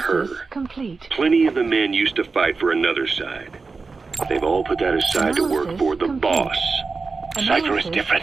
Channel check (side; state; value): left; quieter; 4.3 dB